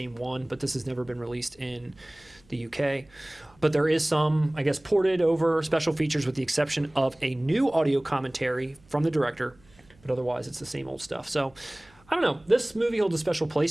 one. But this has never been released in the U.K. But there is some, I guess, ported over special features with the exception of a new audio commentary from the director. But otherwise, it's the same old stuff. So I don't know. This movie holds a special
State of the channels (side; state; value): right; noise; hum, 29 dB below the sound